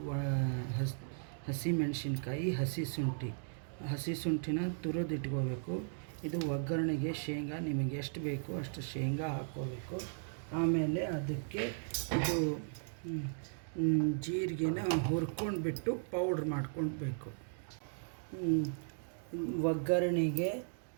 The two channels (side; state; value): left; silent; digital silence